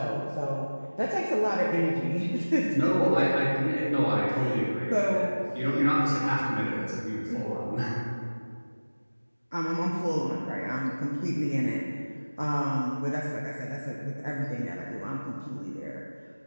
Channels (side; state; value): both; inverted; correlation -1.00